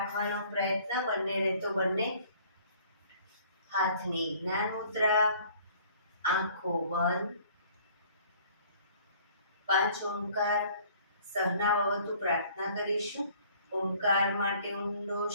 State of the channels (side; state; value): both; inverted; correlation -0.55